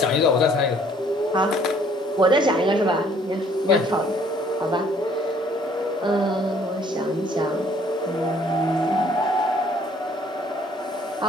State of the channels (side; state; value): both; normal; correlation 0.60